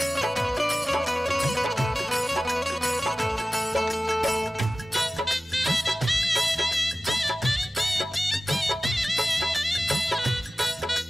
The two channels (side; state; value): both; normal; correlation 0.96